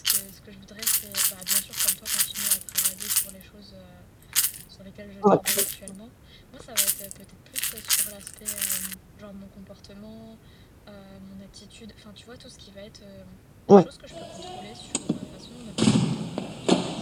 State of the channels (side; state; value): both; identical; correlation 1.00